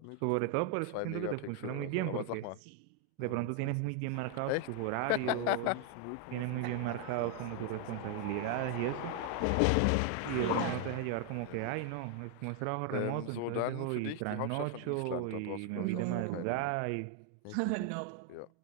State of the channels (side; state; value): both; different; correlation 0.00